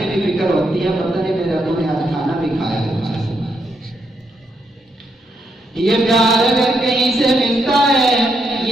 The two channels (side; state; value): both; normal; correlation 0.79